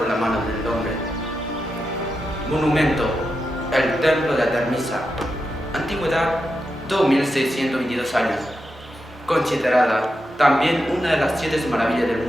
la mano del hombre. Monumento: el templo de Artemisa. Antigüedad: 2622 años. Considerada también una de las 7 maravillas del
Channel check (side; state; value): both; normal; correlation 0.87